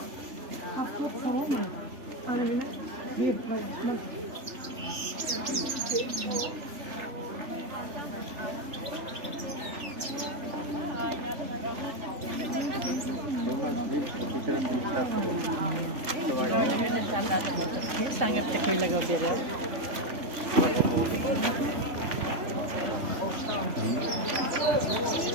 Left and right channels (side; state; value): left; late; 3.4 ms